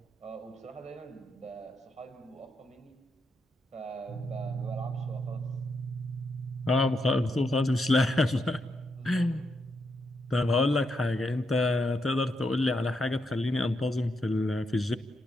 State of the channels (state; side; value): normal; both; correlation 0.81